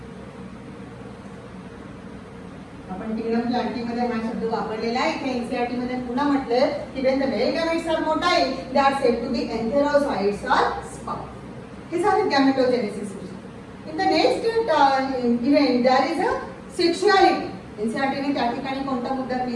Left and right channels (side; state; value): both; identical; correlation 1.00